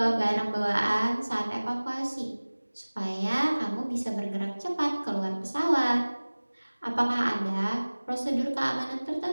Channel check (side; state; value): both; inverted; correlation -1.00